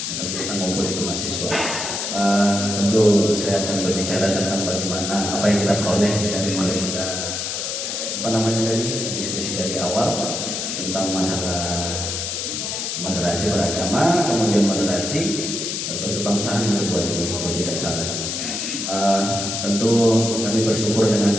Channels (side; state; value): left; noise; hiss, 3 dB below the sound